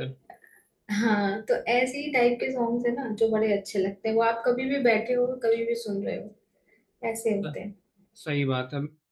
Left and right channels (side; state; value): both; identical; correlation 1.00